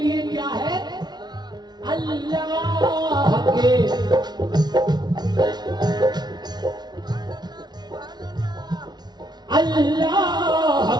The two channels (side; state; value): left; late; 0.20 ms